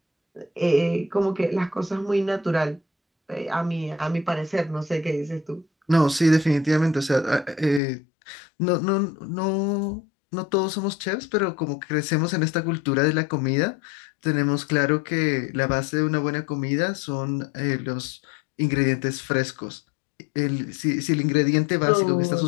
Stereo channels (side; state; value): right; drops out; at 7.8 s